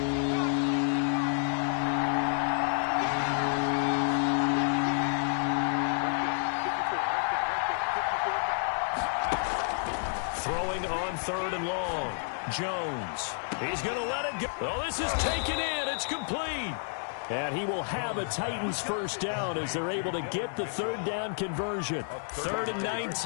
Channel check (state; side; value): silent; right; 58 dB below the other